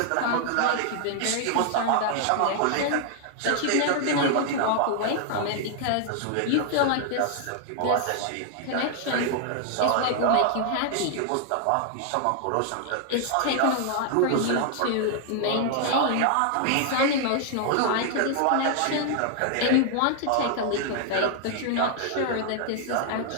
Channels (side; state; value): both; different; correlation 0.00